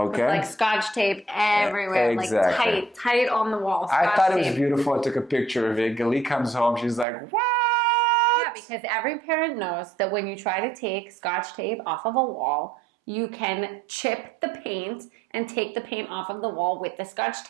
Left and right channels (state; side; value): drops out; left; at 7.1 s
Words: Like scotch tape everywhere. Exactly. Like tight on the wall. I thought it was beautiful. I took a picture of it. Galit comes home. She's like, what? Yeah, because every parent knows that when you try to take scotch tape off of a wall, you can chip the paint and take the paint off of the wall with the scotch